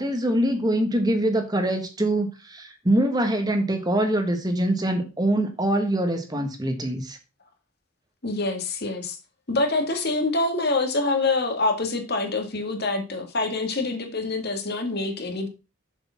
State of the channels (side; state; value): both; normal; correlation 0.39